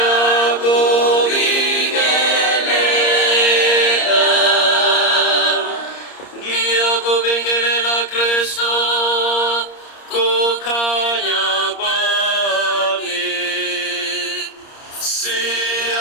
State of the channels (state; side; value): late; right; 30 ms